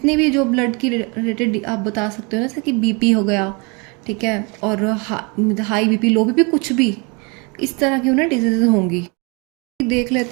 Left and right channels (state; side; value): quieter; left; 31.0 dB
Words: भी जो ब्लड की रिलेटेड आप बता सकते हो, जैसे कि बीपी हो गया, ठीक है, और हाई बीपी, लो बीपी, कुछ भी इस तरह की उन्हें डिजीज़ होंगी। देख